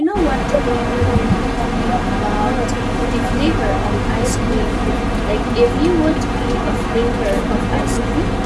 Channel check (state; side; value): identical; both; correlation 1.00